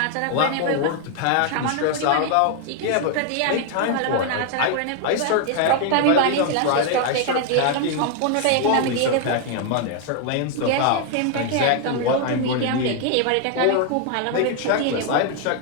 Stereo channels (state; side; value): different; both; correlation 0.00